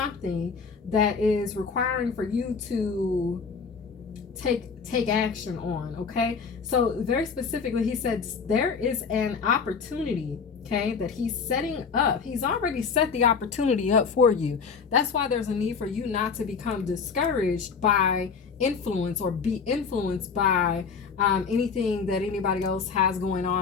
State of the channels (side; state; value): right; quieter; 5.7 dB